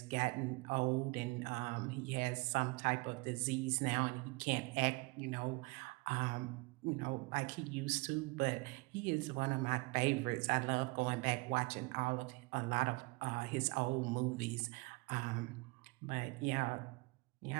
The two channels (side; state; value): left; quieter; 26.0 dB